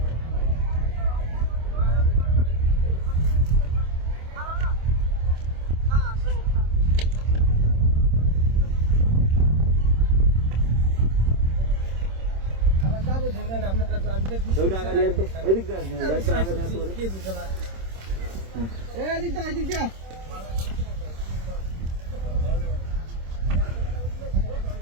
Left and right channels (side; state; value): left; late; 26 ms